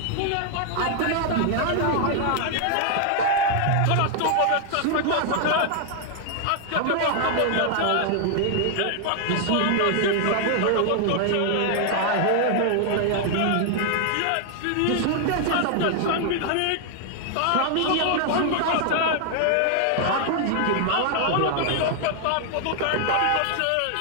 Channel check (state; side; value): different; both; correlation 0.00